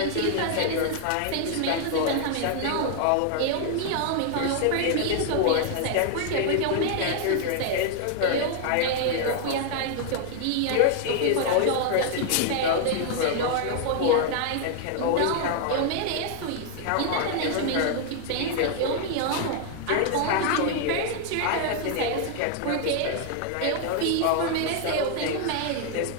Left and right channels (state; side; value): different; both; correlation 0.00